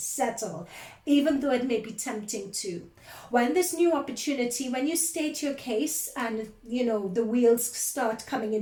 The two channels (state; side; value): identical; both; correlation 1.00